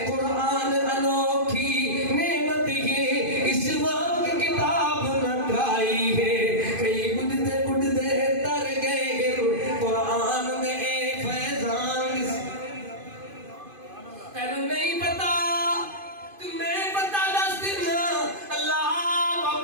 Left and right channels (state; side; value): late; left; 2.5 ms